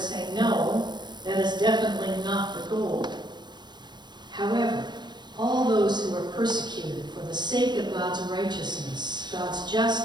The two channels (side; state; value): left; late; 0.21 ms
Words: no, that is definitely not the goal. However, all those who are persecuted for the sake of God's righteousness, God's